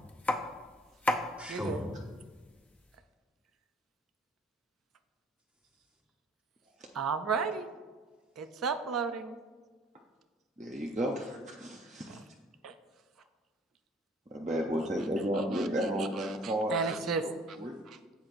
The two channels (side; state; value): both; normal; correlation 0.55